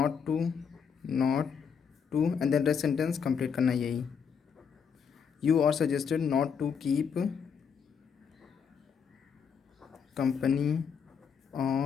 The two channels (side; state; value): right; quieter; 6.7 dB